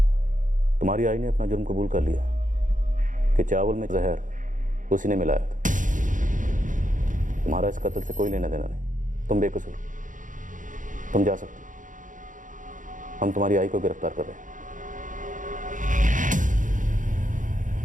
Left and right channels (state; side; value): late; left; 0.38 ms